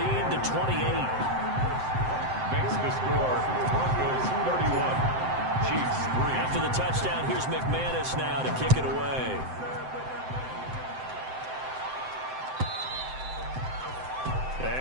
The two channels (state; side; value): late; left; 7.8 ms